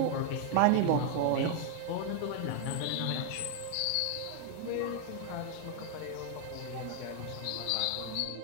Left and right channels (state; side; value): different; both; correlation 0.00